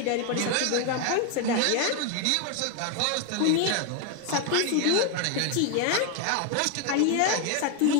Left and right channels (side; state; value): both; different; correlation 0.01